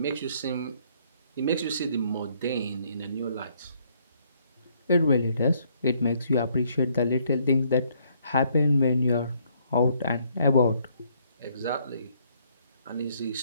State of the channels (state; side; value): inverted; both; correlation -0.68